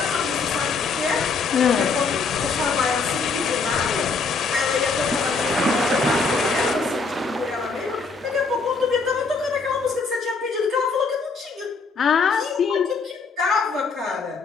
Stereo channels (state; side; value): quieter; right; 4.5 dB